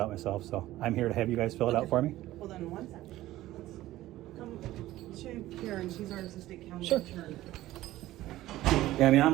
myself. So I'm here to have you guys fill it out for me. Well, then one second. Come to Karen, she's our assistant county Sure. attorney. Yeah, I mean,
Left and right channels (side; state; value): left; quieter; 15.6 dB